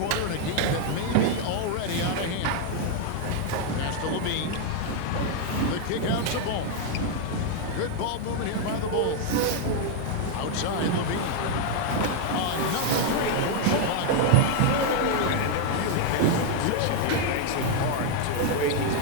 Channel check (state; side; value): different; both; correlation 0.00